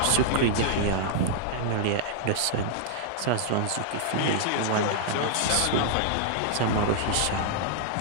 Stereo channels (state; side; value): different; both; correlation -0.01